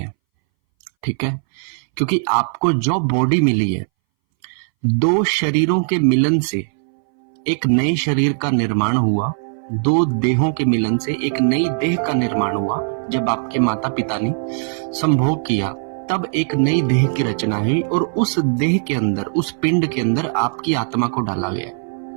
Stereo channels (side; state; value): left; silent; 63 dB below the other